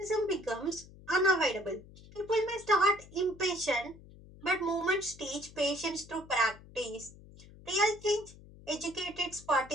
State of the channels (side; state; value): left; noise; hum, 20 dB below the sound